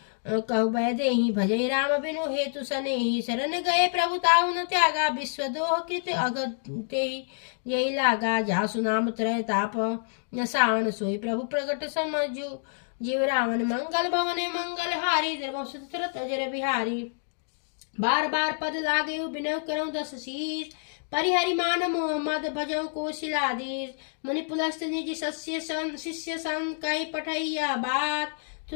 कहु भय देहि भजय राम बिनु हेतु सनेहि शरण गए प्रभु ताहु न त्यागा विश्व दोह कृत अगते यही लागा जासु नाम त्रय ताप न सावन सोई प्रभु प्रगट समझु जीव रावण मंगल भवने मंगल हारी द्रवंश दशरथ अजर बिहारी बार बार पद लागे बिनव करऊँ 10 शीस परिहरि मान मोहम्मद भजऊ को शिलादीस मुनि पुलस्त निज शिष्य सन कही पठैया बात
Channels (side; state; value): right; silent; digital silence